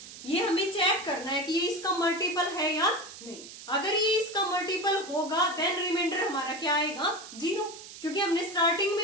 ये हमें चेक करना है कि ये इसका मल्टीपल है या नहीं। अगर ये इसका मल्टीपल होगा देन रिमाइंडर हमारा क्या आएगा, 0, क्योंकि हमने स्टार्टिंग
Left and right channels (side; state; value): right; noise; hiss, 15 dB below the sound